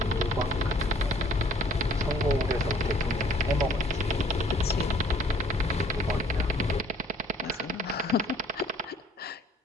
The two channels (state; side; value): normal; both; correlation 0.58